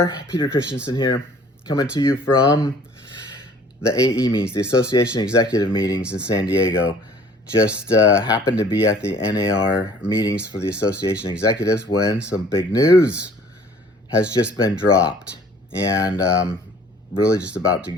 Peter Christensen here, coming to you from the AE meetings, the Association Executive Meetings in San Diego. Just happened to be at the NAR meetings for the Association Executives when some big news has just been dropped. And really just about to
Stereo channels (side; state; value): both; normal; correlation 0.53